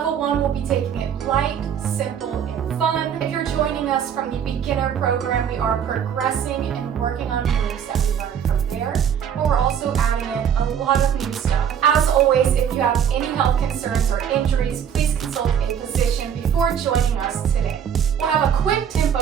1, we'll be taking it light, simple, and fun. If you're joining us from the beginner program, we are progressing and working on moves that we learned from there, but we're also adding in a lot of new stuff. As always, if you have any health concerns or injuries, please consult a physician before joining us today. We'll have a quick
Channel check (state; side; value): quieter; left; 8.4 dB